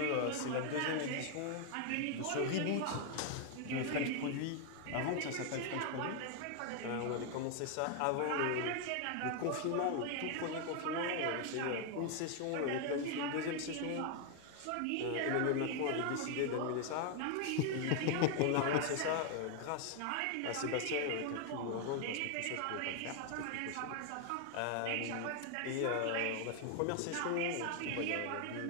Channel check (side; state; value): both; different; correlation 0.00